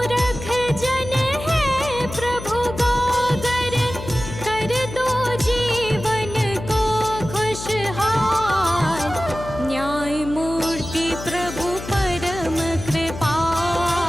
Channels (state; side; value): noise; left; hum, 10 dB below the sound